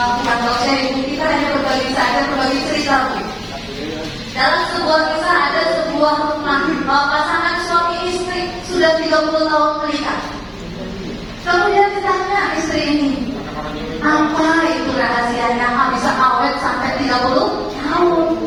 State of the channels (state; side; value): identical; both; correlation 1.00